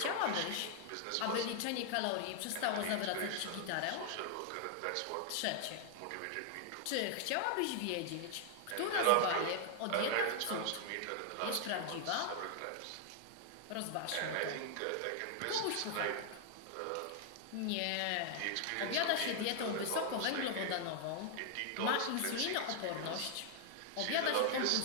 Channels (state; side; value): different; both; correlation 0.00